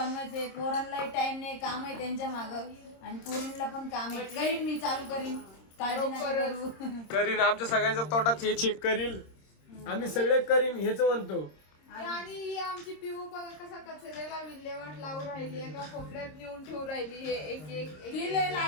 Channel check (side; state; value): right; late; 26 ms